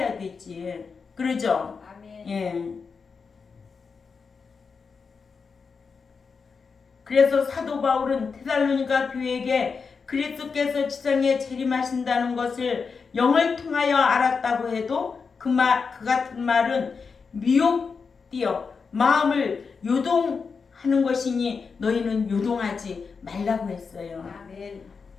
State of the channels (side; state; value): right; quieter; 5.2 dB